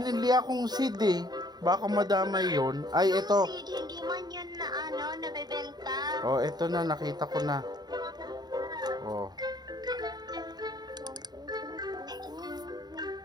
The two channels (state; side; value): late; left; 0.19 ms